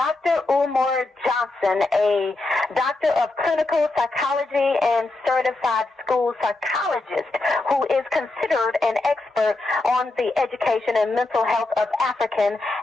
Umar Johnson, a doctor of clinical psychology and certified school psychologist who is considered an expert on the education and mental health of African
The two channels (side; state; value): right; quieter; 3.0 dB